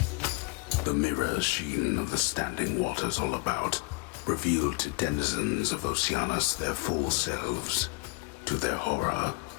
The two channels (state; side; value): quieter; right; 27.0 dB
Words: The mirror sheen of the standing waters all about revealed to denizens of Oceanus their full selves, to their horror